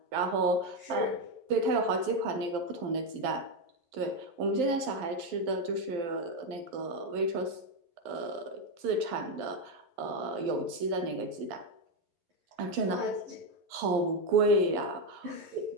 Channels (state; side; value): late; left; 12 ms